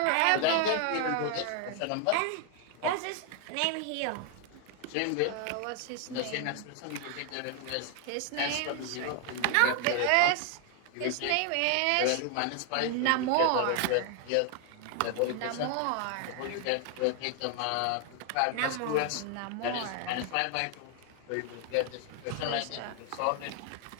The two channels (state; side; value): different; both; correlation 0.00